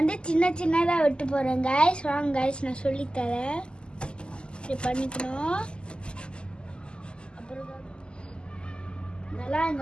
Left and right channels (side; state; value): right; late; 0.049 ms